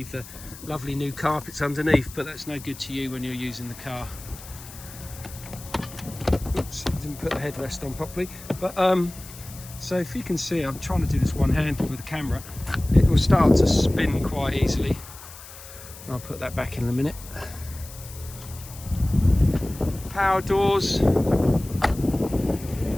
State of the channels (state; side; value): noise; left; hiss, 16 dB below the sound